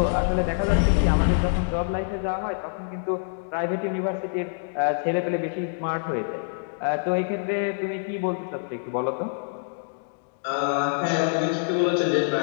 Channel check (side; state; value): right; silent; digital silence